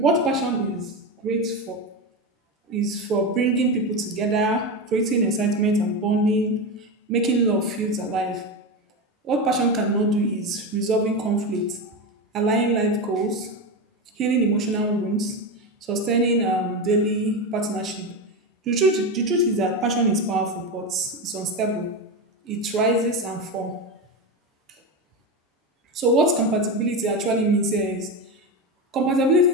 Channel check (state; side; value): normal; both; correlation 0.17